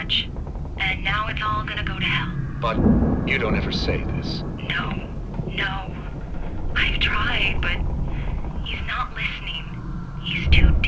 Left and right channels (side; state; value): both; identical; correlation 1.00